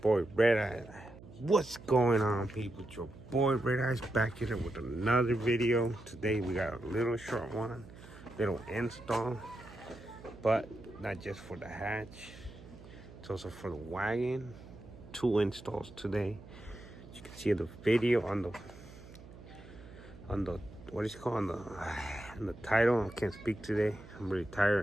Red Eyes. What's going on, people? It's your boy Red Eyes back here with another video. Today we got a little short one, little install, but not just for the hatch, it's also for the wagon. 2 installs today. As you can see the video on the what is it called, on the title. I can't speak today. I'm really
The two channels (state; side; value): noise; right; hum, 18 dB below the sound